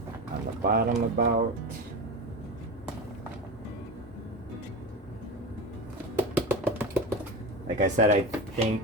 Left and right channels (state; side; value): normal; both; correlation 0.25